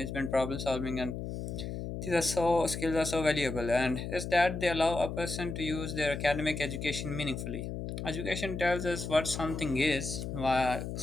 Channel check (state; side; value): noise; left; hum, 5 dB below the sound